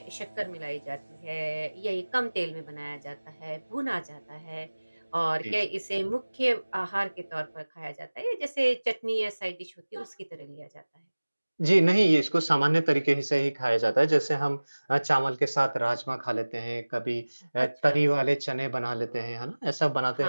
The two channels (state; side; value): inverted; both; correlation -1.00